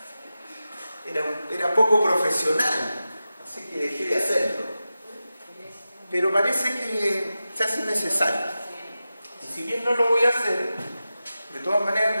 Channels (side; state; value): both; inverted; correlation -0.93